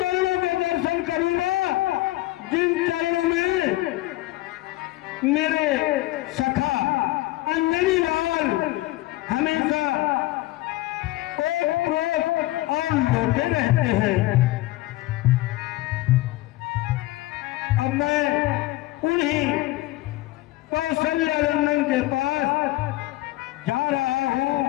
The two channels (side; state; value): right; quieter; 17.9 dB